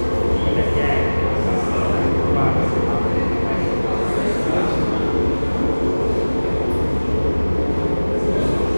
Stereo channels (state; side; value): inverted; both; correlation -1.00